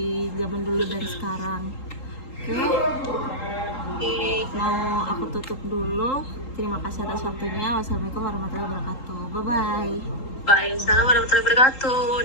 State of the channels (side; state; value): right; late; 3.8 ms